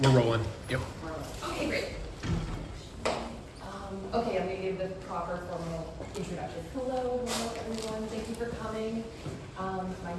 We're rolling. Yep. Okay, great. Okay, I'm going to give the proper formal introduction. Hello, everyone. Thank you for coming. My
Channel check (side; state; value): both; identical; correlation 1.00